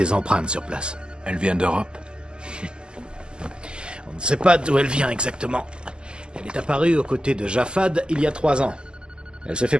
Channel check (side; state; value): left; late; 0.048 ms